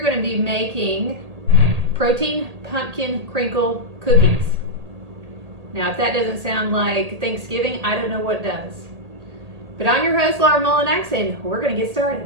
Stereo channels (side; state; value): left; late; 1.8 ms